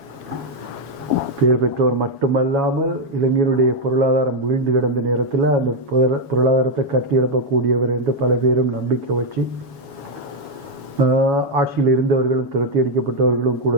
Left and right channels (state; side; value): late; left; 7.2 ms